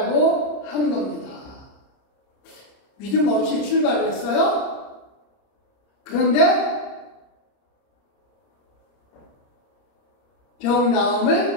하는 겁니다. 믿음 없이 출발했어요. 그런데 병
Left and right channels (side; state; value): right; late; 30 ms